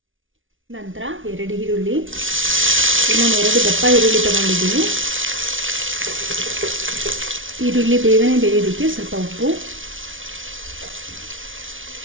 ನಂತರ 2 ಈರುಳ್ಳಿ, ಇನ್ನೊಂದು 2 ದಪ್ಪ ಈರುಳ್ಳಿ ತಗೊಂಡಿದ್ದೀನಿ. ಈರುಳ್ಳಿ ಬೇಗನೆ ಬೇಯೋದಕ್ಕೆ ಸ್ವಲ್ಪ ಉಪ್ಪು,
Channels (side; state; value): left; late; 0.57 ms